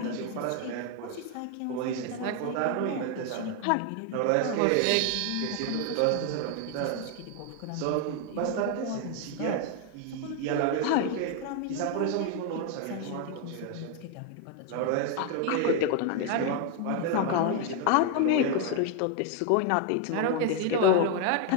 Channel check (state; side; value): different; both; correlation 0.01